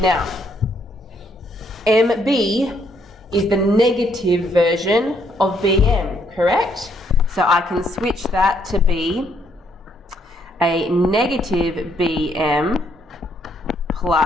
MB is the negative version of BM, correct? So I can switch that to be a negative BM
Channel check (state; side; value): normal; both; correlation 0.71